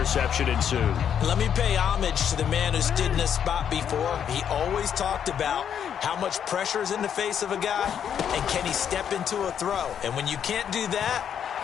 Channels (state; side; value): quieter; right; 8.6 dB